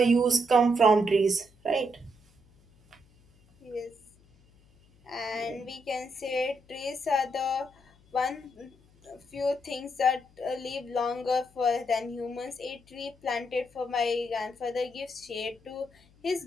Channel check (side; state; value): left; noise; hum, 29 dB below the sound